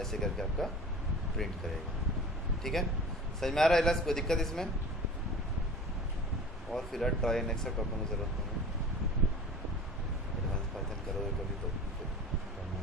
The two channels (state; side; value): normal; both; correlation 0.40